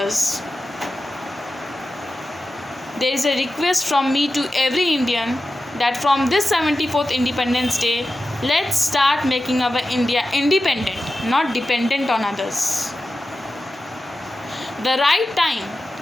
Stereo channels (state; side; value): normal; both; correlation 0.93